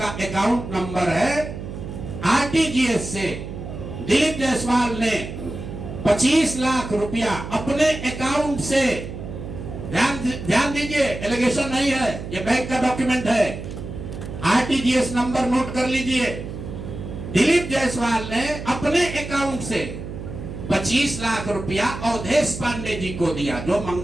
अकाउंट नंबर है। आरटीजीएस से दिलीप जायसवाल ने 25 लाख रुपया अपने अकाउंट से, ध्यान दीजिए, एलिगेशन नहीं है, ये बैंक का डॉक्यूमेंट है। आरटीजीएस नंबर नोट कर लीजिए। दिलीप जायसवाल ने अपने अकाउंट से 25 लाख रुपया अवधेश पांडे जी को दिया, जो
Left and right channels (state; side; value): noise; right; hum, 9 dB below the sound